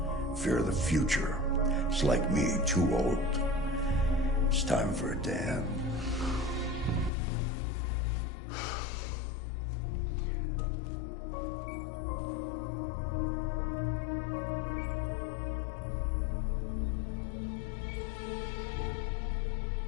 Fear of the future. It's like me, too old. It's time for a dam.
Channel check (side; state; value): right; drops out; at 7.1 s